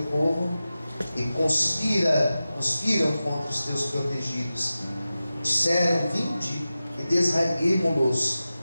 povo e conspiram contra os teus protegidos. Disseram: vinde e desraiguemo-los,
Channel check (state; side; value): inverted; both; correlation -0.94